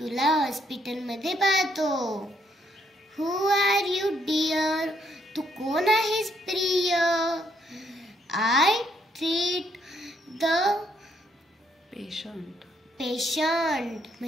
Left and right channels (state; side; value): normal; both; correlation 0.72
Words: हॉस्पिटलमध्ये पाहतो. हू आर यू डिअर, तू कोण आहेस प्रिय. आय ट्रीट द पेशंट